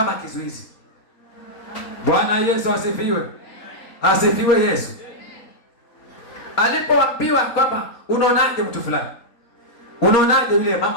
kizuizi. Bwana Yesu asifiwe. Asifiwe Yesu. Alipoambiwa kwamba unaonaje mtu fulani, unaonaje yule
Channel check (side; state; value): right; late; 4.0 ms